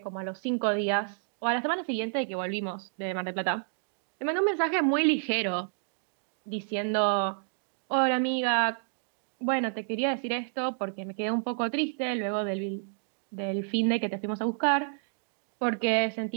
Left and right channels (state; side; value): silent; left; digital silence